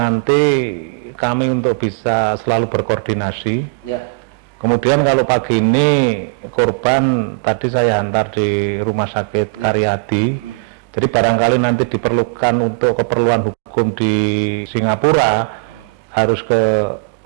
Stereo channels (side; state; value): left; quieter; 34.9 dB